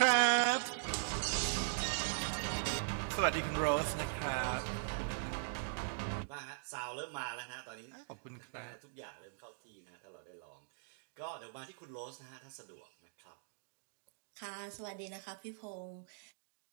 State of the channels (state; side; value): silent; left; digital silence